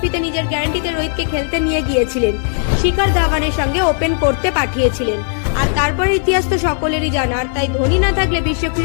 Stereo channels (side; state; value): right; silent; digital silence